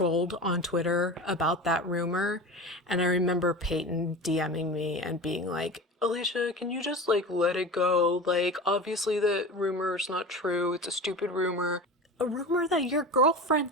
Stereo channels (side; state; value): both; normal; correlation 0.31